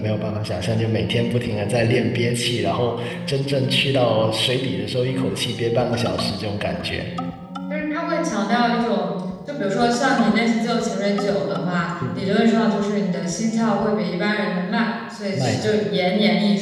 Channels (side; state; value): both; identical; correlation 1.00